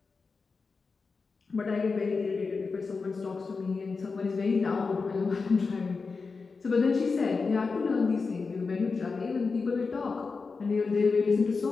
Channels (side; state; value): right; quieter; 4.5 dB